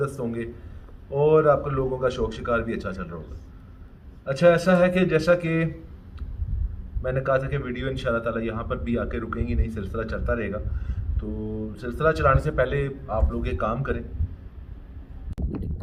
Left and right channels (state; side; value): identical; both; correlation 1.00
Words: होंगे और आपके लोगों का शौक शिकार भी अच्छा चल रहा होगा। अच्छा, ऐसा है कि जैसा कि मैंने कहा था कि वीडियो इंशाल्लाह ताला यहाँ पर भी आके रुकेंगी नहीं, सिलसिला चलता रहेगा। तो सिलसिला चलाने से पहले आप लोग एक काम करें